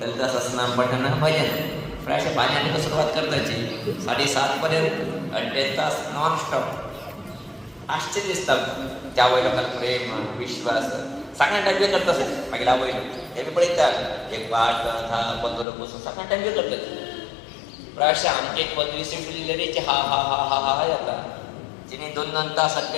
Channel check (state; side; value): drops out; right; at 15.7 s